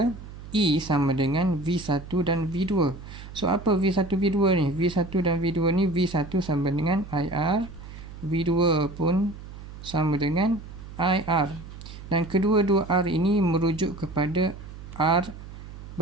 E sama dengan V1 dan V2. So, apa V1, V2 ni? V1 dan V2 ni, V1 sama dengan IR, V2 pun sama dengan IR. Dan kedua-dua R ini merujuk kepada R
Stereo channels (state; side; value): noise; right; hum, 14 dB below the sound